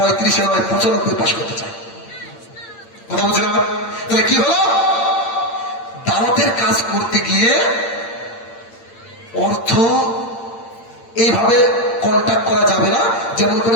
নয় 95 পাস করতে চাই। কথা বুঝলেন আমার? তাহলে কি হলো? দাওয়াতের কাজ করতে গিয়ে অর্থ এইভাবে কন্ট্যাক্ট করা যাবে না, যেমন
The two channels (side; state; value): right; late; 8.7 ms